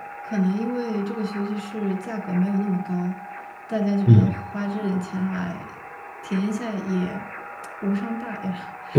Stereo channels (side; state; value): both; identical; correlation 1.00